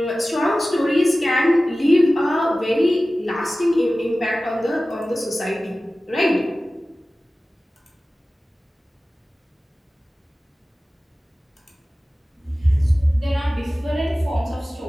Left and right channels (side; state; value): both; normal; correlation 0.96